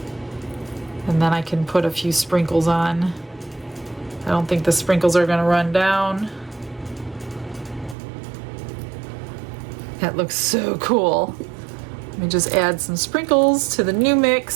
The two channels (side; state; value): left; drops out; at 8.0 s